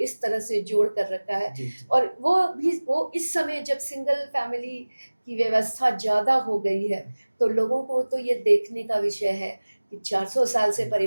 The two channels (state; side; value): inverted; both; correlation -1.00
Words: तरह से जोड़ कर रखा है। जी और वो इस समय जब सिंगल फैमिली की व्यवस्था ज़्यादा हो गई है, तो लोगों को तो ये देखने का विषय है कि 400 साल से